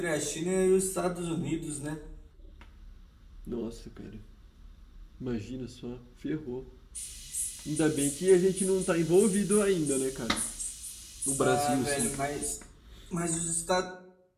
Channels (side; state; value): both; identical; correlation 1.00